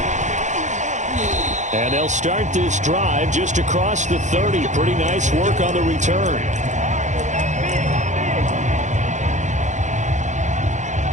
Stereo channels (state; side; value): late; left; 0.35 ms